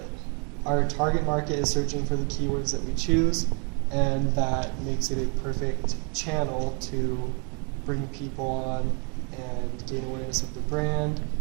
Our target market is searching for the keywords that we choose, and that makes it a perfect channel to bring people on and gain awareness of the brand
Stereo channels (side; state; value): left; quieter; 36.7 dB